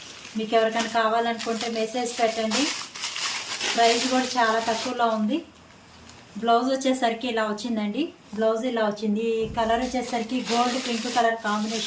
మీకు ఎవరికైనా కావాలనుకుంటే మెసేజ్ పెట్టండి. ప్రైస్ కూడా చాలా తక్కువలో ఉంది. బ్లౌజ్ వచ్చేసరికి ఇలా వచ్చిందండి. బ్లౌజ్ ఇలా వచ్చింది. ఈ కలర్ వచ్చేసరికి గోల్డ్ పింక్ కలర్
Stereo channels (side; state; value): both; identical; correlation 1.00